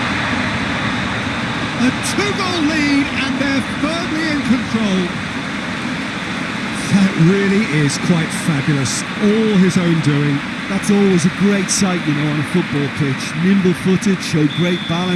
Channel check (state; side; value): identical; both; correlation 1.00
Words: A 2-goal lead and they're firmly in control. That really is quite fabulous. All his own doing. That's always a great sight, you know, on a football pitch. Nimble-footed, showed great